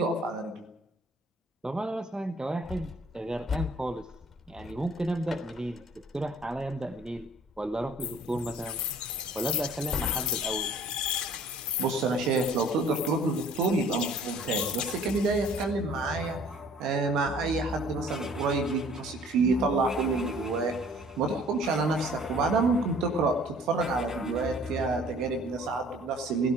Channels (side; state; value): both; normal; correlation 0.53